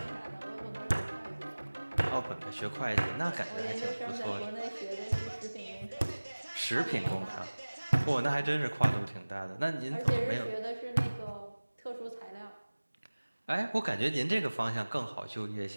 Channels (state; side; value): inverted; both; correlation -1.00